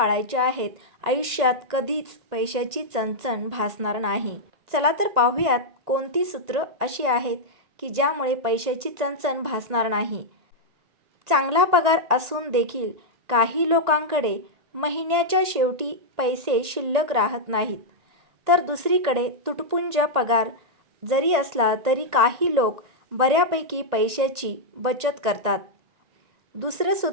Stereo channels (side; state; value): left; late; 1.9 ms